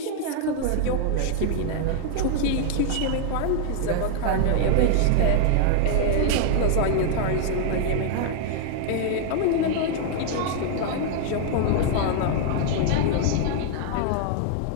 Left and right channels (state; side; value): different; both; correlation 0.00